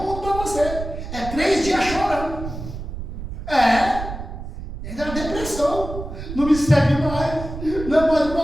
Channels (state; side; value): noise; right; rumble, 9 dB below the sound